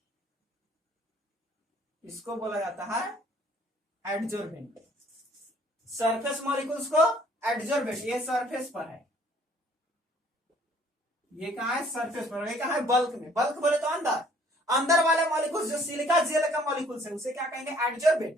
इसको बोला जाता है एडजॉर्बेंट। सरफेस मॉलिक्यूल्स को एडजॉर्बेंट, ये सरफेस पर है, ये कहां है? सरफेस पर। ये कहां है? बल्क में। बल्क बोले तो अंदर, अंदर वाले मॉलिक्यूल्स जो सिलिका जेल का मॉलिक्यूल्स है उसे क्या कहेंगे?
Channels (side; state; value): both; normal; correlation 0.59